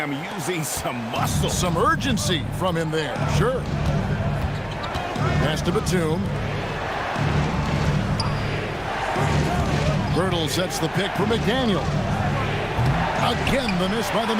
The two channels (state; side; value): identical; both; correlation 1.00